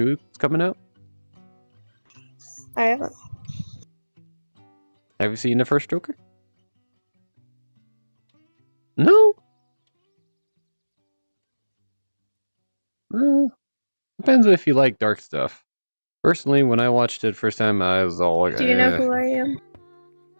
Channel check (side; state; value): both; inverted; correlation -1.00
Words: that's coming out? I haven't. Have you seen the first Joker? No? Well, depends if you like dark stuff. Personally, when I watched it first time, I was all like, Do you know who I am?